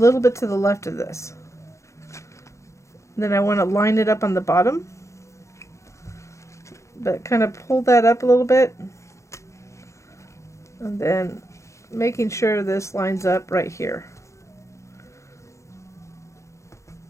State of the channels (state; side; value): late; right; 0.14 ms